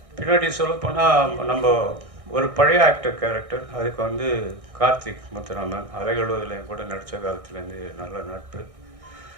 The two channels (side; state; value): left; late; 1.6 ms